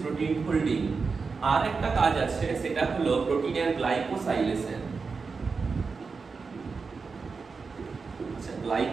প্রোটিন ফোল্ডিং। আর একটা কাজ আছে, সেটা হলো প্রোটিনের গ্লাইকোসাইলেশন।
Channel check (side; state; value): left; quieter; 4.8 dB